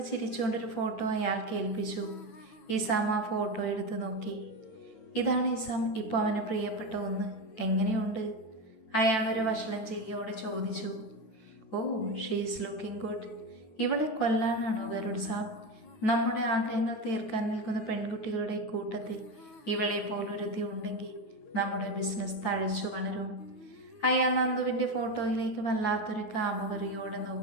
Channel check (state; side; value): late; right; 9.2 ms